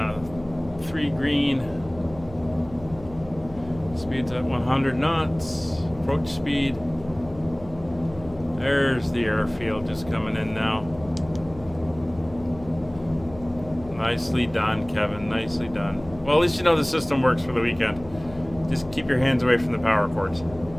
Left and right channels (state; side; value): noise; left; hum, 17 dB below the sound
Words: 3 green. Speed's at 100 knots. Approach speed. There's the airfield just coming in now. Nicely done, Kevin. Nicely done. Well, at least you know the system works for the weekend. Just keep your hands away from the power cords.